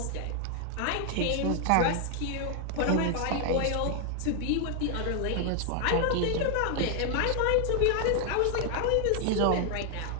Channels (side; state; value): both; different; correlation 0.00